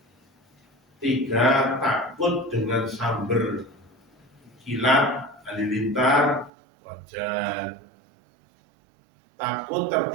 3, takut dengan samber kilat halilintar, wajar. Takut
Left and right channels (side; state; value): left; drops out; at 6.5 s